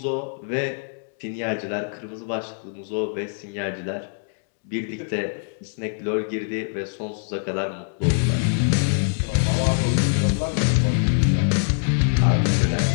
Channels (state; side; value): silent; right; digital silence